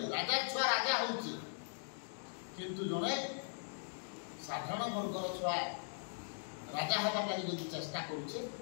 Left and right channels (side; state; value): right; silent; digital silence